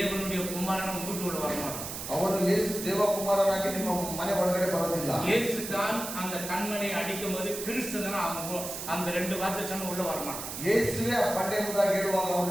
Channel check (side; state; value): right; noise; hiss, 7 dB below the sound